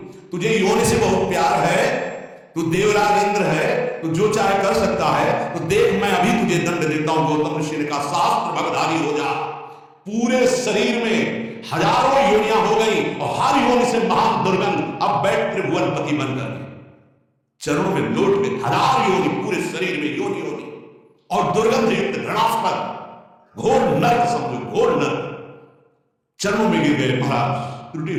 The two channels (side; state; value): both; identical; correlation 1.00